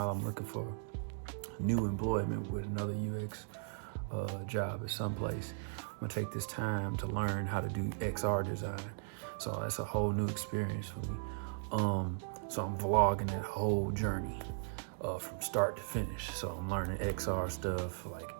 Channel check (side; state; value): left; silent; digital silence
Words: I'm looking for new employment with another UX job at some place. I'm gonna take this time to learn how to do XR design. So that's a whole new experience for me. So I'm vlogging that whole journey from start to finish. So I'm learning XR stuff like